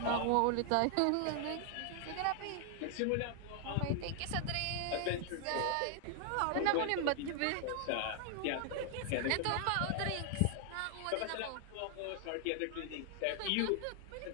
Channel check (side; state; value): both; different; correlation 0.00